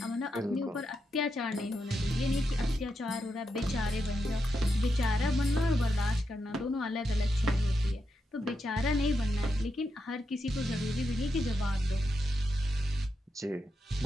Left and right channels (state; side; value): normal; both; correlation 0.85